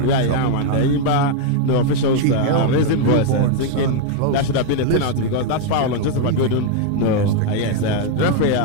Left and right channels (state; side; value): different; both; correlation 0.00